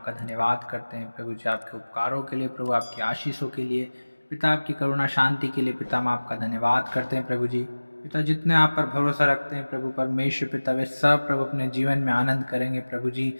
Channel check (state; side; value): inverted; both; correlation -1.00